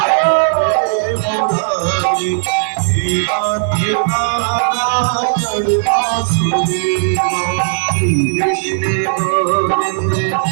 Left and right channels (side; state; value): left; silent; digital silence